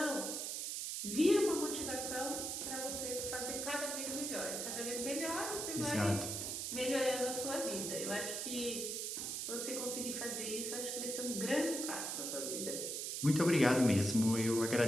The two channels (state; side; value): noise; right; hiss, 3 dB below the sound